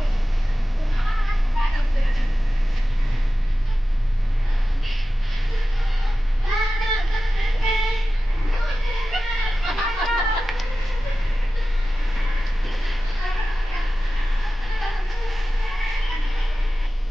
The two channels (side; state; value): both; normal; correlation 0.94